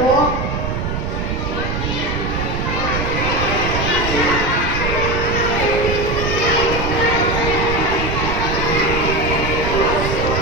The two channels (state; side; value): noise; right; rumble, 2 dB below the sound